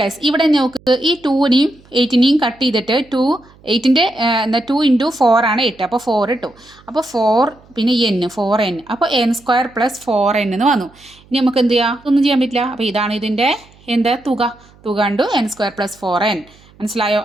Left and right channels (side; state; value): right; noise; hum, 28 dB below the sound